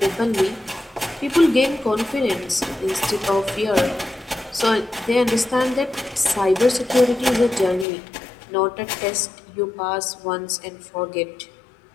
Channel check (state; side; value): drops out; right; at 7.9 s